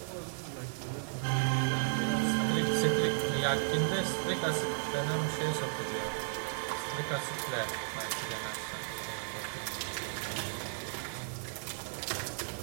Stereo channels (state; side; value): silent; left; digital silence